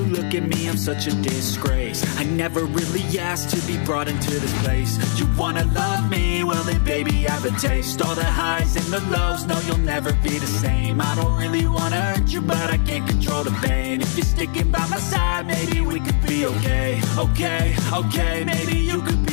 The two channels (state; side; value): silent; right; digital silence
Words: look at me, I'm such a disgrace. I never really asked to be brought into this place. You wanna love me? Well then baby I have a taste. All the highs and the lows, no you'll never be the same. I don't really wanna hurt you but I can't control the pain. If you're sticking by my side, maybe we could be okay. Okay, maybe you could